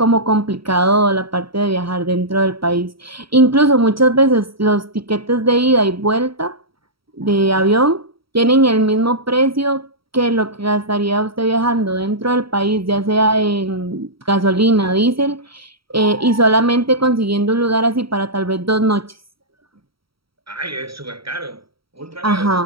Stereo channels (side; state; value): left; late; 0.75 ms